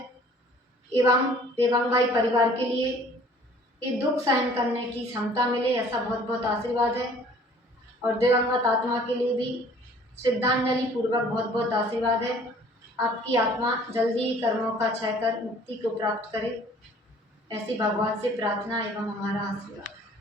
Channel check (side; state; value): both; normal; correlation 0.53